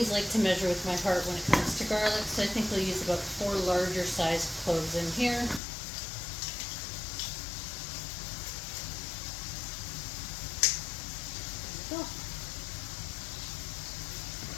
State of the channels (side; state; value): right; drops out; at 5.6 s